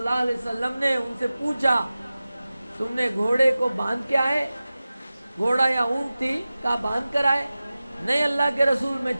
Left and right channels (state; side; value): inverted; both; correlation -0.96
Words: علیہ وسلم نے ان سے پوچھا تم نے گھوڑے کو باندھ کے آئے؟ گھوڑا یا اونٹ تھی، کہا باندھ کر آئے. نہیں اللہ کے رسول، میں